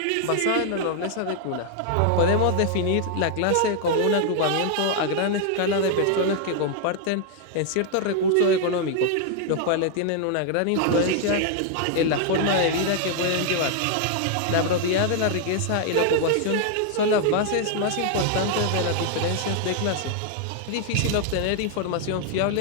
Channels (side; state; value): both; different; correlation 0.00